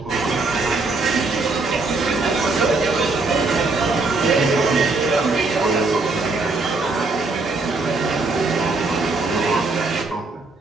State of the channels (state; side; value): quieter; left; 3.6 dB